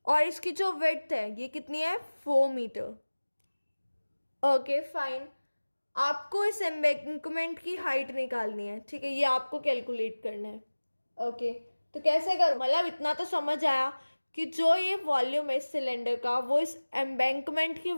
और इसकी जो विड्थ है ये कितनी है 4 मीटर। ओके फाइन, आपको इस एम्बैंकमेंट की हाइट निकालनी है। ठीक है, ये आपको कैलकुलेट करना है। ओके, तो कैसे करो, मतलब इतना तो समझ आया कि जो ये वॉल्यूम है इस सिलेंडर का वो इस एम्बैंकमेंट की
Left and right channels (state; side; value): inverted; both; correlation -1.00